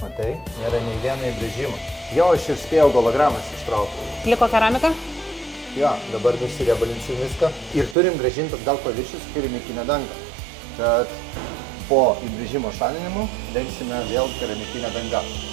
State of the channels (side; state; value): left; drops out; at 8.0 s